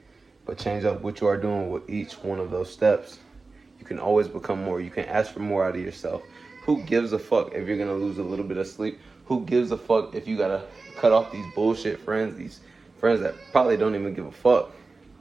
but change up what you are doing with each one of those steps. You can always become more. You can ask for more out of yourself. Who gives a fuck if you're going to lose a little bit of sleep? Who gives a fuck if you got to cut off these bullshit friends, these friends that probably don't even give a fuck?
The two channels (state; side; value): quieter; left; 3.8 dB